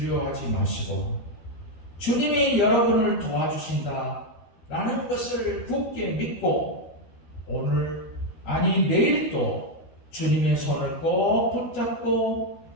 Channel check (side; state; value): right; late; 12 ms